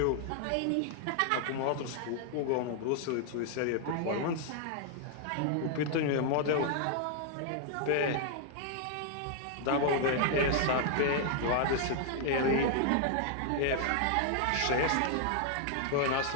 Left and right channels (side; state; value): both; different; correlation 0.00